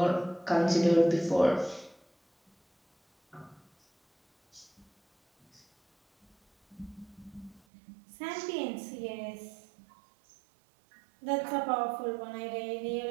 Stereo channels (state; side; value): drops out; left; at 7.6 s